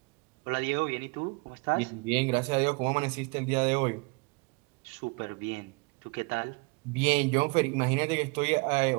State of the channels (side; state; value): left; quieter; 29.1 dB